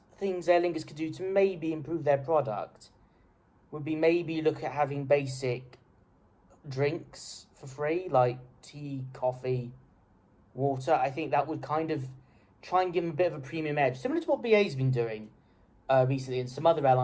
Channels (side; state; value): both; identical; correlation 1.00